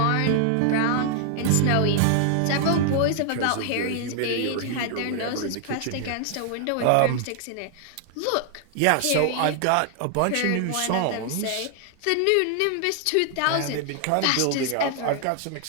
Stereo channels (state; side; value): different; both; correlation 0.00